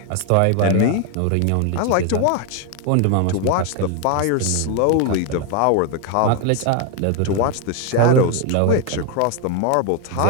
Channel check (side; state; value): both; different; correlation 0.01